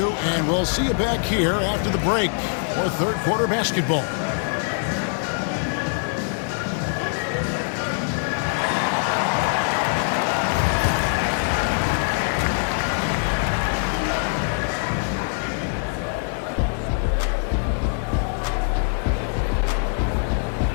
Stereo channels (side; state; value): right; silent; 63 dB below the other